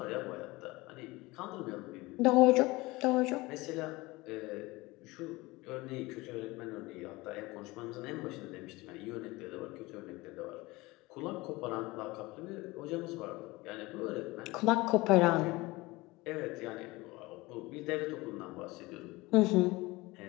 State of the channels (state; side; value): quieter; right; 21.6 dB